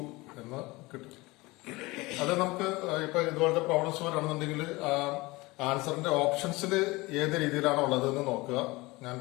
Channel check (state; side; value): quieter; right; 22.2 dB